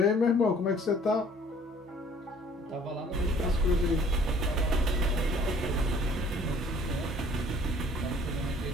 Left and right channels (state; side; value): normal; both; correlation 0.55